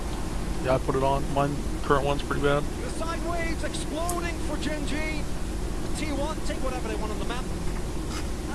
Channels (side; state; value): both; identical; correlation 1.00